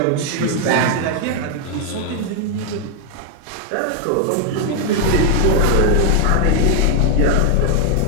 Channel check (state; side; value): different; both; correlation 0.00